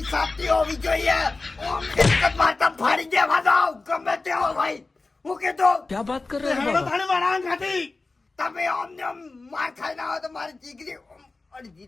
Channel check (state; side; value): quieter; right; 3.6 dB